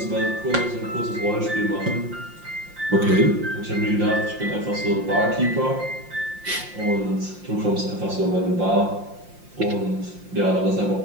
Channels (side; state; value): left; late; 5.7 ms